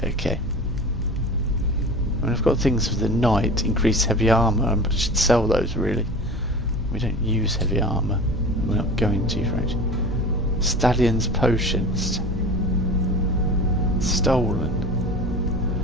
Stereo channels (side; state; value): both; normal; correlation 0.36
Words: Okay. I mean, I've got things for the knight, increase heavy armor. I should sell those really. We don't use heavy armor. We're not going to, right? Stallion's potions. Stolen.